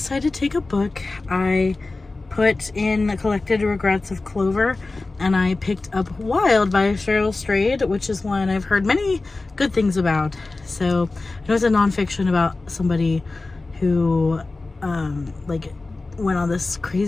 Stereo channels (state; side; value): quieter; right; 3.4 dB